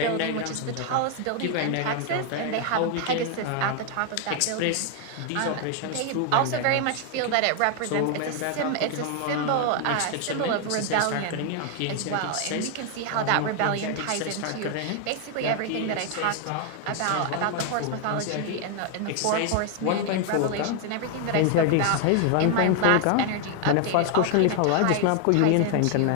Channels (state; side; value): different; both; correlation 0.00